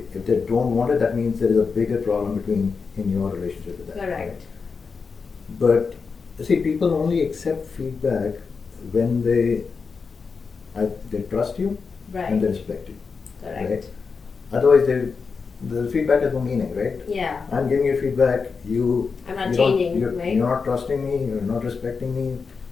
they don't want it, that means there is a bigger problem in your relationship with that. Correct. Right? But see, people only accept feedback when they trust you Right. and they respect you. Correct. Right? Otherwise, the feedback has no meaning, right? Yeah. I'm giving you feedback. I'm not you don't- changing, right? You're not trusting me. You're not respecting me.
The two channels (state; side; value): quieter; right; 5.1 dB